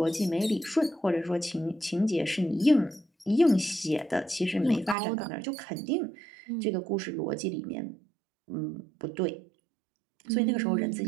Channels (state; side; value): drops out; left; at 5.0 s